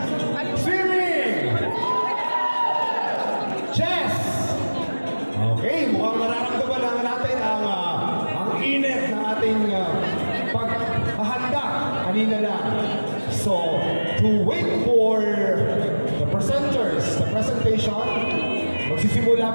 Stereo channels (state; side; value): inverted; both; correlation -1.00